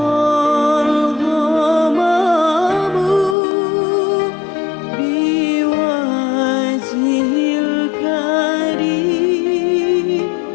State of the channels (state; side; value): drops out; right; at 3.4 s